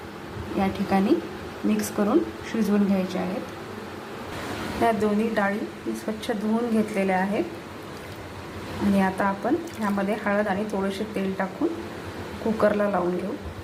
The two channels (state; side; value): identical; both; correlation 1.00